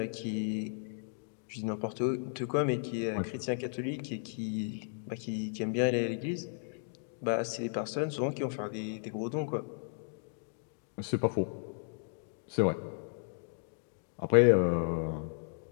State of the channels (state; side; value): silent; right; digital silence